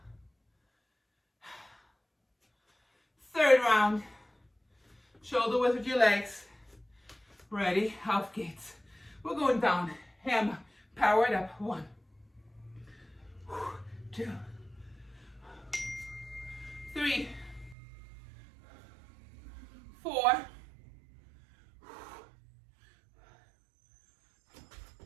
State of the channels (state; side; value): drops out; left; at 17.8 s